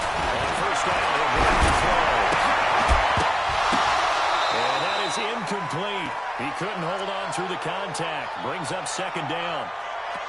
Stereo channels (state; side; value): identical; both; correlation 1.00